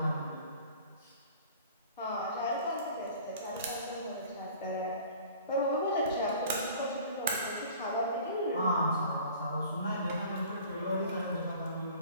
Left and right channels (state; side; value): inverted; both; correlation -0.46